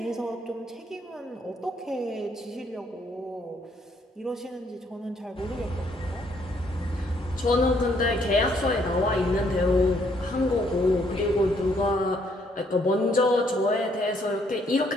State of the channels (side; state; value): both; normal; correlation 0.69